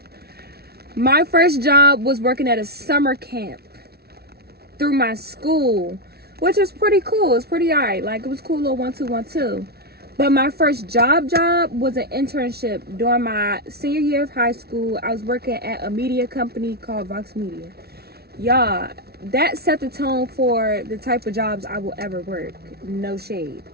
My first job was working at a summer camp through my school, which was pretty cool. It was pretty alright. Like, it was cool, little 1-2-1-2. But my first job was an internship during my senior year of high school. I was working at a media company called Vox Media. Y'all, that set the tone for the type of jobs I will ever work. No shade.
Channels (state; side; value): late; left; 0.46 ms